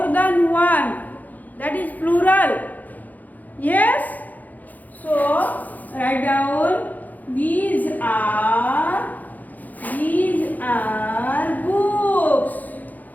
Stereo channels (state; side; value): late; right; 0.081 ms